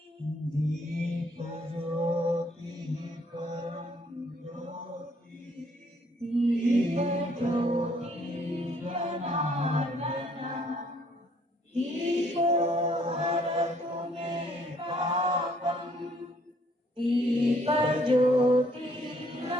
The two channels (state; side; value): normal; both; correlation 0.65